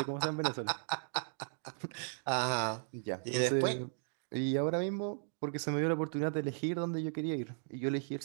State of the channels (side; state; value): left; silent; digital silence